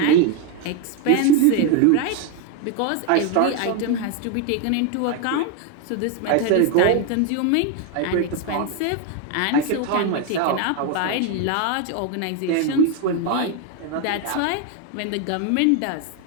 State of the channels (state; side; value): different; both; correlation 0.01